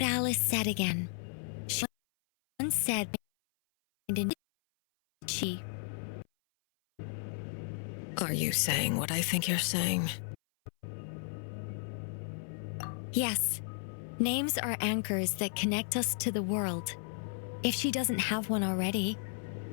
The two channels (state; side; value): silent; right; 55 dB below the other